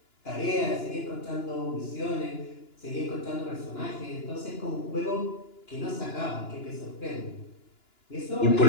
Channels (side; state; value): right; late; 2.9 ms